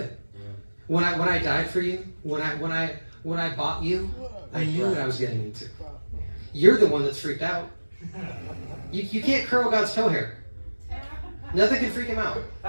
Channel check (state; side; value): inverted; both; correlation -1.00